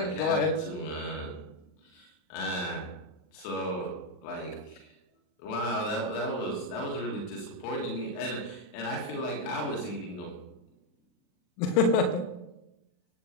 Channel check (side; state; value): right; late; 39 ms